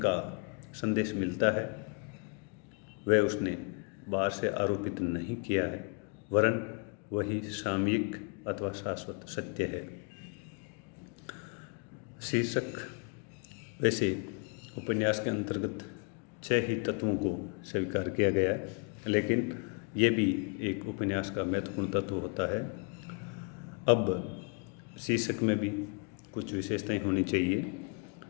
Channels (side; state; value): right; quieter; 35.4 dB